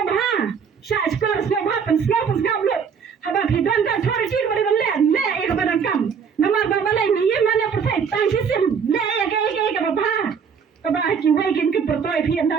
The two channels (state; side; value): quieter; left; 6.5 dB